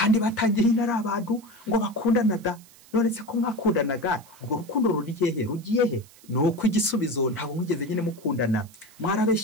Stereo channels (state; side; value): noise; right; hiss, 25 dB below the sound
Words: batangiye ari abantu ngo bakundana da. None se ko mwakundanaga, ubwo rukundo rugiye he? Nuko igisubizo ntabwo mwigeze nyine mukundana,